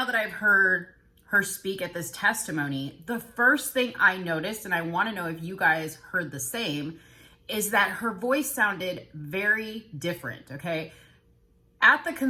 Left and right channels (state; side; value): identical; both; correlation 1.00